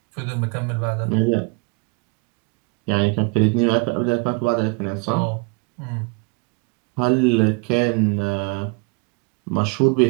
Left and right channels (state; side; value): quieter; left; 30.7 dB